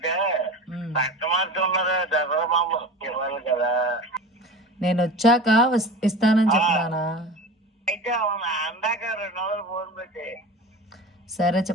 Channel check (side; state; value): both; normal; correlation 0.33